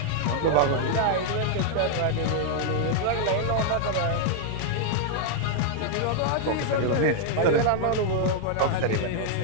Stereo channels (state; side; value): different; both; correlation -0.01